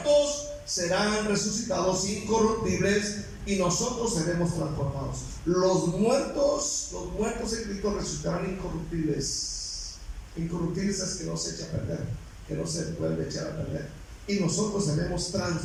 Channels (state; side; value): identical; both; correlation 1.00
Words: serán resucitados incorruptibles y nosotros seremos transformados. Los muertos en Cristo resucitarán incorruptibles. Incorruptibles es que no se echa a perder, que no se vuelve a echar a perder. Y nosotros seremos